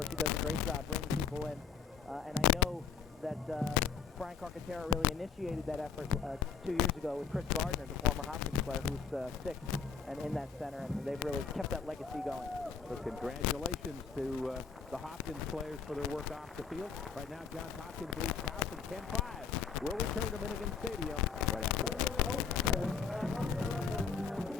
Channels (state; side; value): quieter; right; 6.4 dB